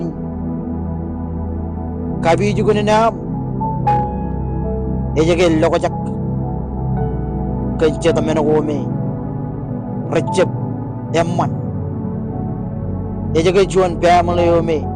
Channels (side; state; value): both; identical; correlation 1.00